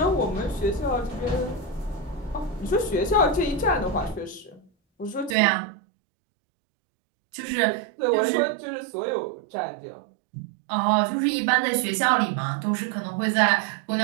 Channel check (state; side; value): drops out; left; at 5.4 s